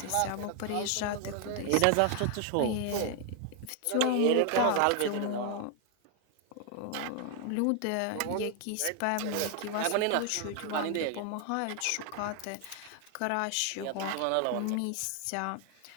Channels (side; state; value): both; different; correlation 0.00